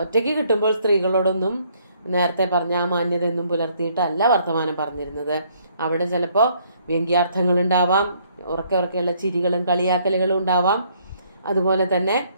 ഒറ്റയ്ക്ക് കിട്ടുമ്പോൾ സ്ത്രീകളോടൊന്നും നേരത്തെ പറഞ്ഞ ആ മാന്യതയൊന്നും പുലർത്തിയിട്ടല്ല വർത്തമാനം പറഞ്ഞിരുന്നത്. അവിടെ ചിലപ്പോൾ വ്യംഗ്യാർത്ഥങ്ങൾ ഉണ്ടാവാം, ഉറക്കെയുള്ള ചിരികളും കളിയാക്കലുകളും ഉണ്ടാവാം. അതുപോലെ തന്നെ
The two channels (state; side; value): inverted; both; correlation -0.66